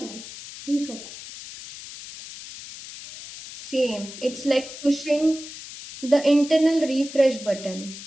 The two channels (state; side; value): noise; left; hiss, 13 dB below the sound